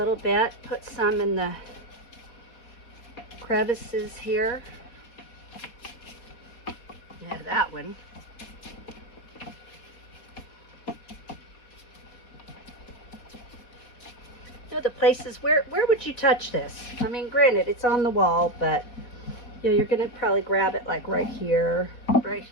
bit, put some in the crevices here. Yeah, that one. You know, the places, where would you touch this? I mean, granted, it's on the wall, but you know, you're going to probably grab it like right here, right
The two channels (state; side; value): late; right; 4.2 ms